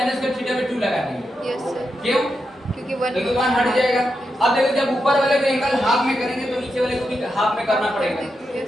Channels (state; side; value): normal; both; correlation 0.86